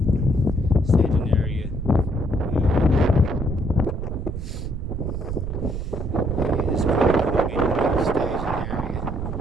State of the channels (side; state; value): right; noise; rumble, 5 dB below the sound